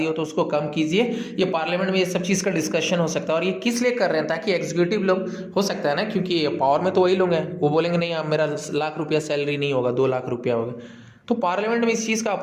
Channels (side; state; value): both; identical; correlation 1.00